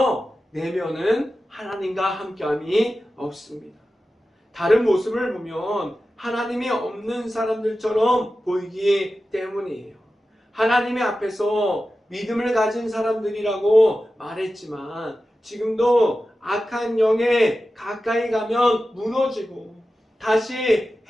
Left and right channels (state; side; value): normal; both; correlation 0.93